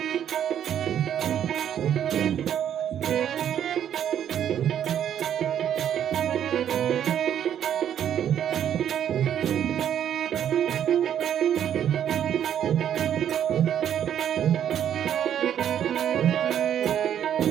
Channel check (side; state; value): left; quieter; 9.8 dB